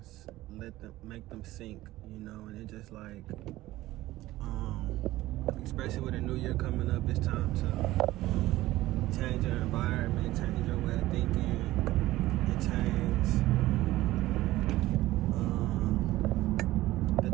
make them sink, and it just like especially with a new year coming up, it's time to change your environment, change your way of thinking, and change the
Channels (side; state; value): left; quieter; 16.6 dB